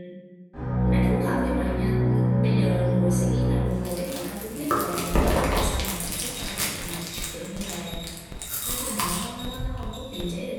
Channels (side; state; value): both; identical; correlation 1.00